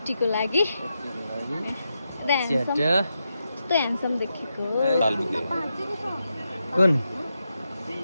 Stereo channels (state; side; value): inverted; both; correlation -0.86